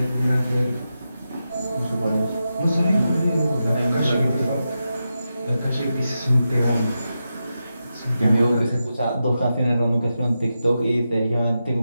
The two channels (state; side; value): inverted; both; correlation -0.89